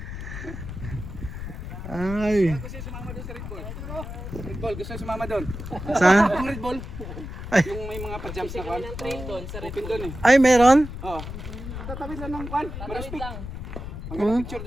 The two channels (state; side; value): noise; left; rumble, 8 dB below the sound